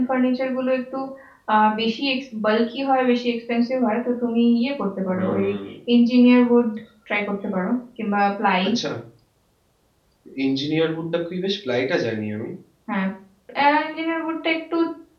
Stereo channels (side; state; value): both; identical; correlation 1.00